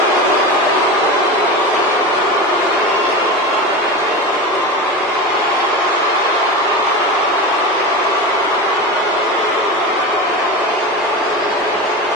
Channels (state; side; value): normal; both; correlation 0.25